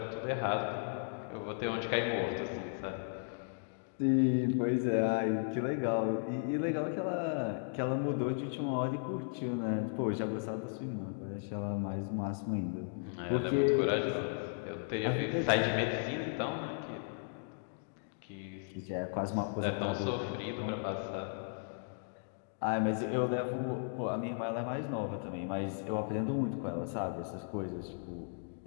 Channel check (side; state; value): right; silent; digital silence